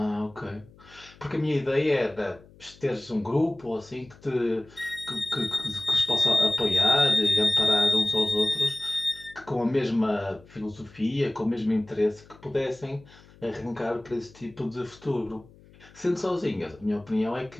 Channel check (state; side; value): noise; left; hum, 24 dB below the sound